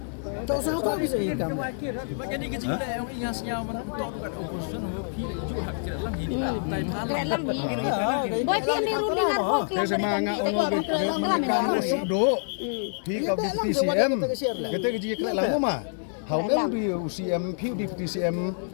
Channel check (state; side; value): silent; right; digital silence